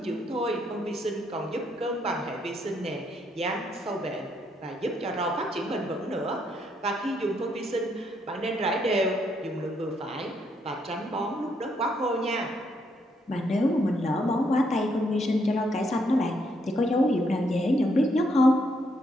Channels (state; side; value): normal; both; correlation 0.74